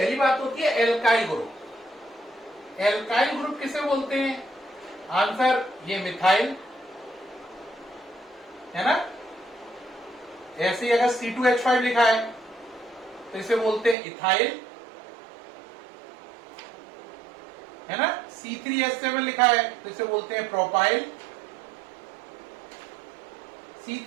बात होती है एल्काइल ग्रुप। एल्काइल ग्रुप किसे बोलते हैं? आंसर ये मिथाइल, है ना। ऐसे ही अगर C2H5 लिखा है तो इसे बोलते हैं इथाइल, है ना। C3H7 लिखा है तो इसे बोलते हैं प्रोपाइल।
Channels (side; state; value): left; drops out; at 14.0 s